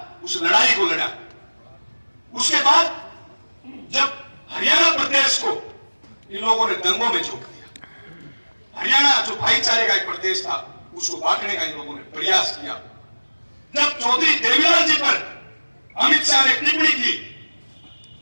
उस लड़ाई को लड़ा। उसके बाद जब हरियाणा प्रदेश को इन लोगों ने दंगों में झोंक दिया, हरियाणा जो भाईचारे का एक प्रदेश था उसको बांटने का इन लोगों ने प्रयास किया। जब चौधरी देवीलाल जी पर अमित शाह ने टिप्पणी की,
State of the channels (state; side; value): inverted; both; correlation -1.00